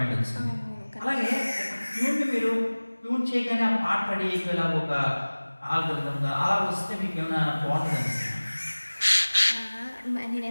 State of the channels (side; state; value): both; inverted; correlation -1.00